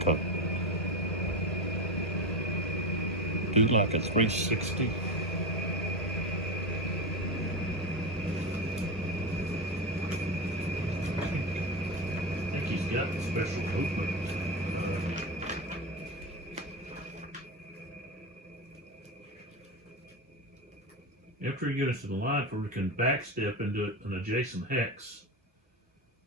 a 360? I think he's got special movement. After he gets to the line, we can backstep into an adjacent hex,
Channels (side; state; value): both; normal; correlation 0.18